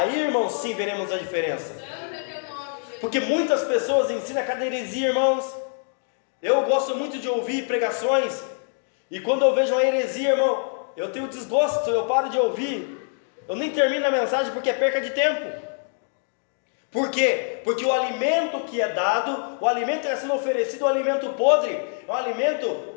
irmãos, sim, veremos a diferença. Santo é teu nome, Jesus. Porque muitas pessoas ensinam cada heresia, irmãos. Eu gosto muito de ouvir pregações, e quando eu vejo uma heresia, irmão, eu tenho desgosto, eu paro de ouvir, eu nem termino a mensagem porque é perca de tempo. Por quê? Porque o alimento que é dado, o alimento que está sendo oferecido, é um alimento podre, é um alimento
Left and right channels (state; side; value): silent; right; 57 dB below the other